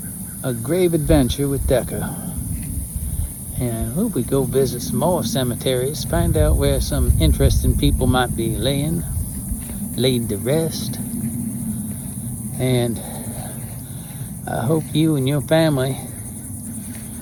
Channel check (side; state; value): both; identical; correlation 1.00